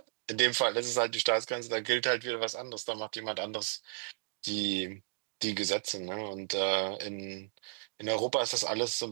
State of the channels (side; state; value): left; silent; digital silence